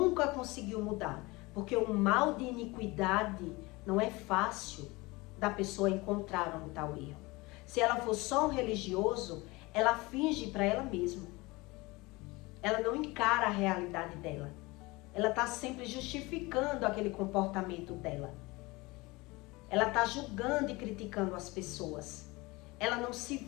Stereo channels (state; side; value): quieter; right; 23.2 dB